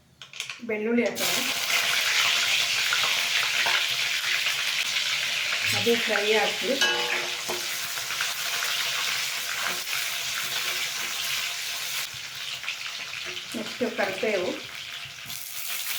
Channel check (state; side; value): identical; both; correlation 1.00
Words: ಬೆಳ್ಳುಳ್ಳಿ ಹಾಕೋಣ. ಅದು ಫ್ರೈ ಹಾಕಿ ನೆಕ್ಸ್ಟು ಕರಿಬೇವು,